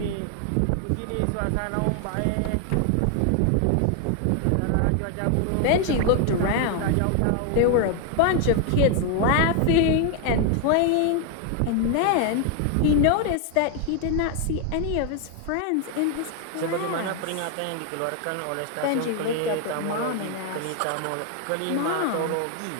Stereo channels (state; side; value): different; both; correlation 0.00